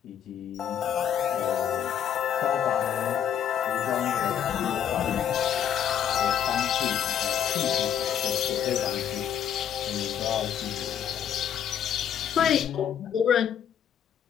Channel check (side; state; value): right; quieter; 9.2 dB